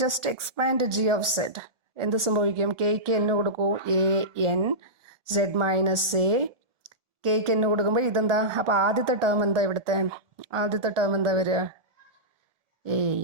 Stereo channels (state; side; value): late; left; 1.4 ms